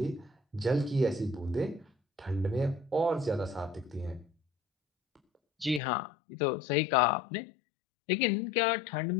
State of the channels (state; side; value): drops out; right; at 5.8 s